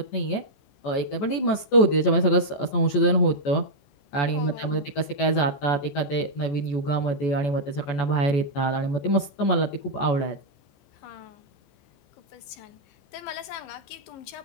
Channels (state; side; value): late; right; 14 ms